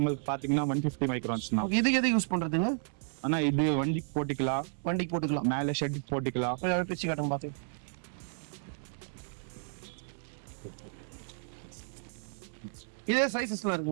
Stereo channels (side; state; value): left; silent; 56 dB below the other